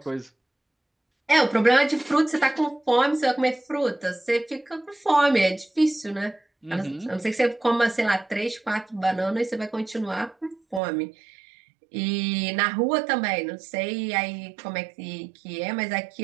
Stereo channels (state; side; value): drops out; left; at 10.8 s